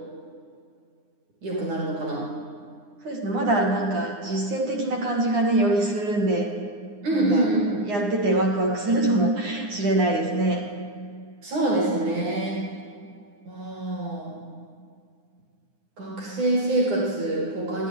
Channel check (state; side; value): late; left; 9.8 ms